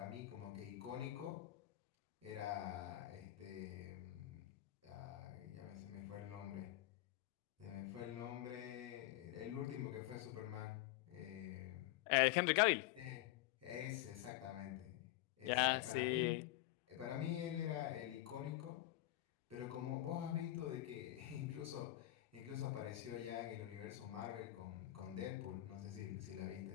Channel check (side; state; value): right; quieter; 15.7 dB